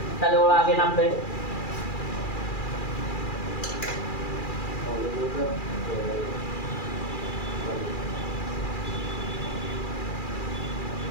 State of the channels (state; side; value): late; right; 2.4 ms